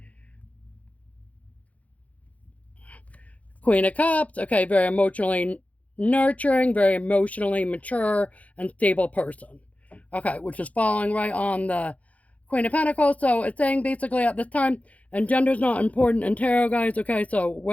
Queen of Cups, okay, very emotionally nurturing, very emotionally mature and stable person. Okay, which is falling right on the Queen of Pentacles. So it's saying basically at this time, and gender's not important in tarot, guys, okay? So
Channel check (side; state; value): right; late; 0.068 ms